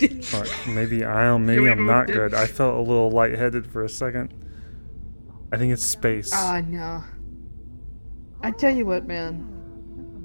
Alright, maybe I'm not good. I felt a little lightheaded for a second. I think it's space. No. I tell you what, man.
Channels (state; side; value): inverted; both; correlation -1.00